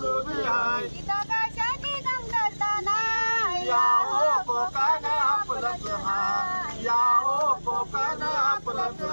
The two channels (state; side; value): inverted; both; correlation -1.00